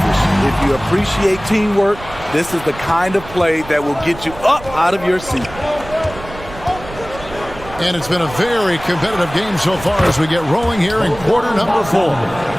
If you appreciate teamwork, this is the kind of play that will get you up out of your seat. And it's been a very competitive game so far as we get rolling here in quarter number 4.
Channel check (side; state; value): right; noise; rumble, 15 dB below the sound